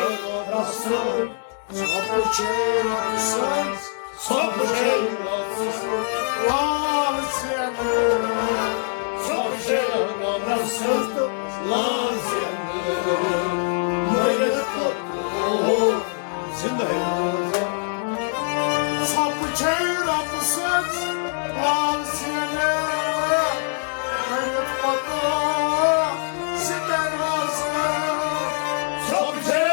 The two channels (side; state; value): right; silent; 63 dB below the other